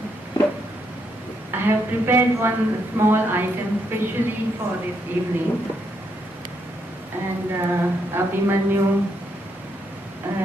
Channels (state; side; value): normal; both; correlation 0.76